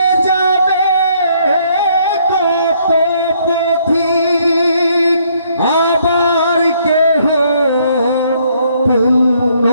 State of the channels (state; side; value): inverted; both; correlation -0.67